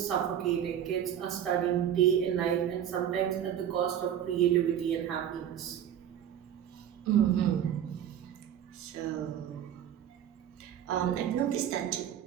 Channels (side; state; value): left; quieter; 9.9 dB